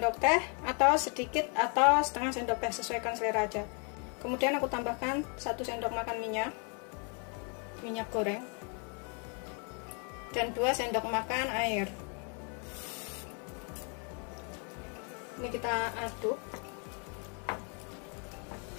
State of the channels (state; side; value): quieter; right; 37.5 dB